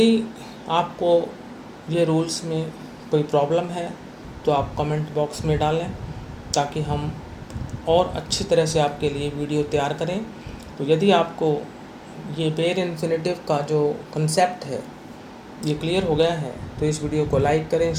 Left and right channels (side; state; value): both; identical; correlation 1.00